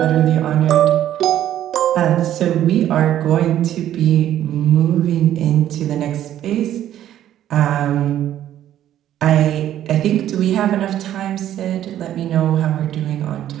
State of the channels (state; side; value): quieter; left; 11.8 dB